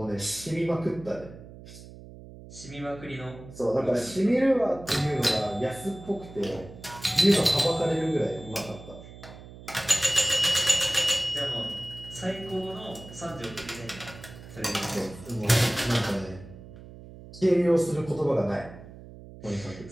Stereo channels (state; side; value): noise; right; hum, 17 dB below the sound